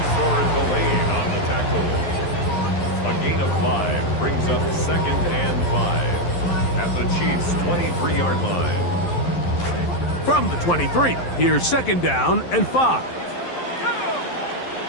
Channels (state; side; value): late; right; 11 ms